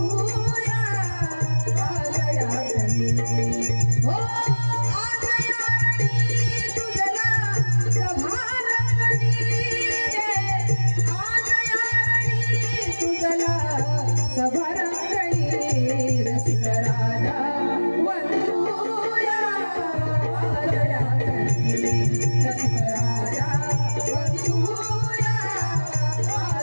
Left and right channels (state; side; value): inverted; both; correlation -1.00